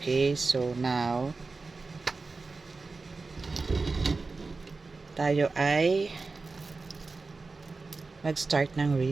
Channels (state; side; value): quieter; left; 3.9 dB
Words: so now tayo ay mag-start ng